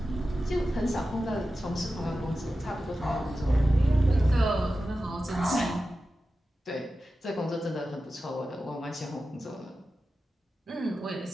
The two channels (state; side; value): normal; both; correlation 0.93